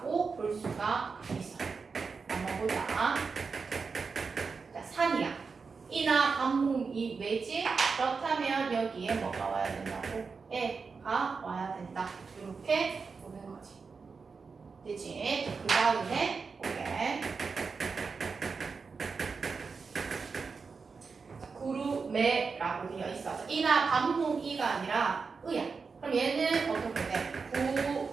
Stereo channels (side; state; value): left; quieter; 5.0 dB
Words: 볼 수가 있어. 한번 보자. 자, 산이야. 이나 반모음이 왜지? 그렇다면 여기에 뭐가 와야 된다고? 애가 와야 된다. 이렇게 보는 거지. 되지? 그 다음에 오케이. 구루매라고 되어 있어. 이나 반모음이가 아니라 의야. 그럼 얘는 어떻게 돼?